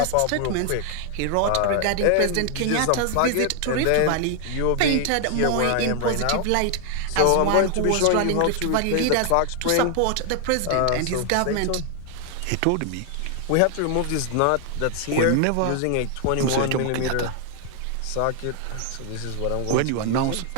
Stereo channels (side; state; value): both; different; correlation 0.00